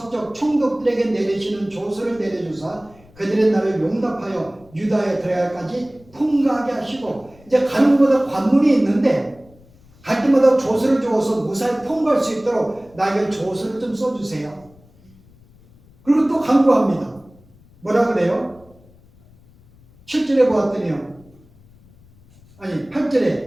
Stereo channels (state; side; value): noise; left; rumble, 27 dB below the sound